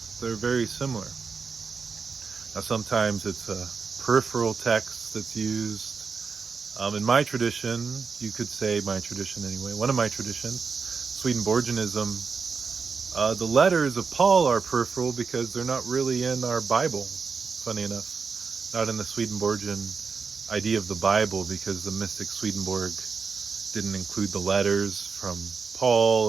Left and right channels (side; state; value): left; quieter; 5.3 dB